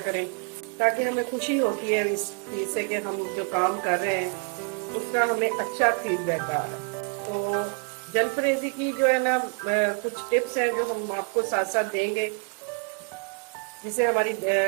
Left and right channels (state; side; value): quieter; left; 37.6 dB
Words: करें, ताकि हमें खुशी होती है इस चीज़ से कि हम जो काम कर रहे हैं उसका हमें अच्छा फीडबैक आ रहा है। तो जलफ्रेज़ी की जो है ना कुछ टिप्स हैं जो हम आपको साथ साथ देंगे, जिससे हमारी